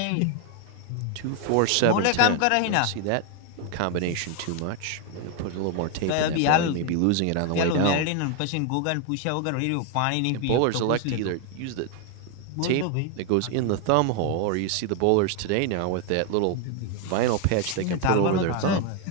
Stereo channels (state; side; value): different; both; correlation 0.01